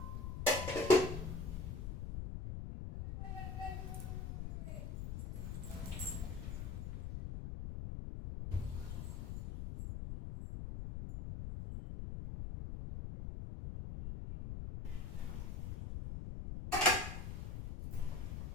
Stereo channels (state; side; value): noise; left; rumble, 4 dB below the sound